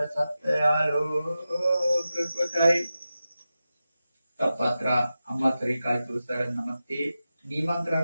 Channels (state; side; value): inverted; both; correlation -0.93